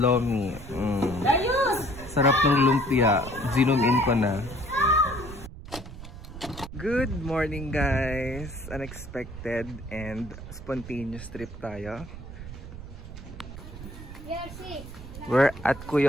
Sarap ng lumpia. Zoom in ko na. Good morning guys! Unexpected and spontaneous trip tayo. We're at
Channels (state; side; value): noise; right; rumble, 12 dB below the sound